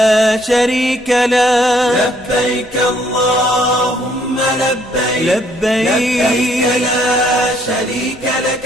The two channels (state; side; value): noise; left; rumble, 26 dB below the sound